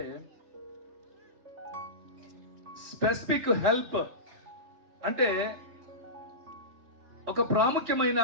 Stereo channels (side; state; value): left; late; 3.1 ms